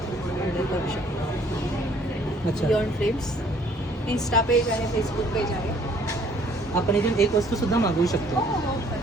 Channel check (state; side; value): normal; both; correlation 0.60